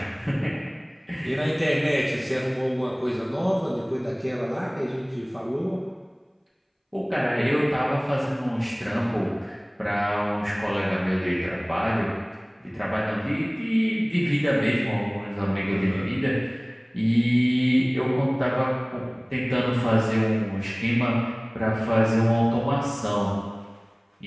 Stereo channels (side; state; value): both; identical; correlation 1.00